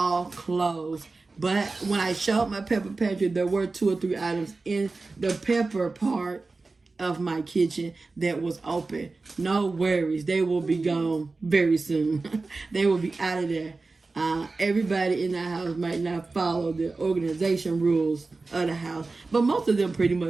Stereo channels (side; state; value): left; quieter; 3.7 dB